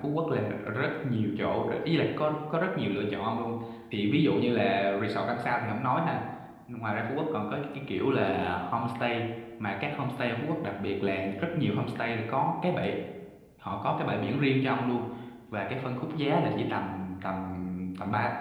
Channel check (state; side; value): identical; both; correlation 1.00